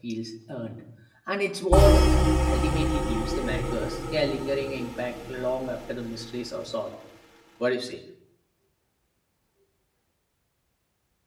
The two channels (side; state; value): both; identical; correlation 1.00